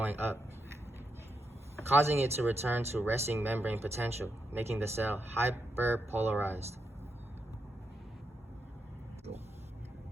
up, causing it to return to resting membrane potential, making the cell hyperpolarized.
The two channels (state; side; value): normal; both; correlation 0.83